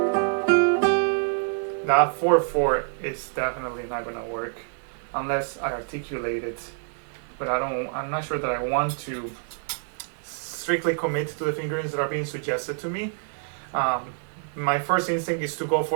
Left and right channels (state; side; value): silent; left; 61 dB below the other